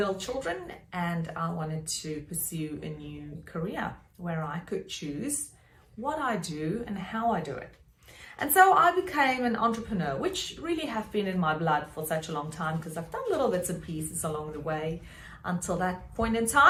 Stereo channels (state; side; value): identical; both; correlation 1.00